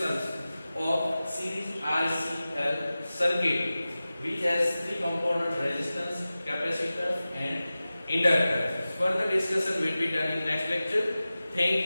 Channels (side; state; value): both; inverted; correlation -0.96